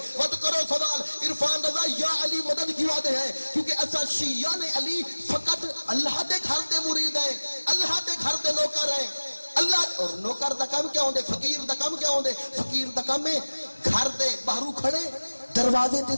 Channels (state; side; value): inverted; both; correlation -1.00